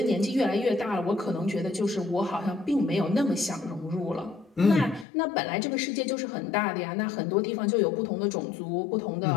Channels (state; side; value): drops out; right; at 5.1 s